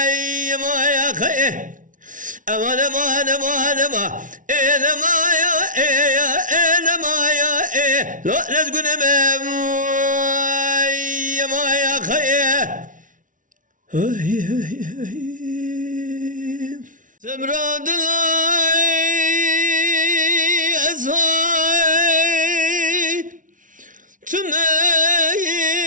أمان أمان أمان أمان إنما يا لو نسقن ما يا خيه سمراد الله أزهاي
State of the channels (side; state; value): left; late; 0.38 ms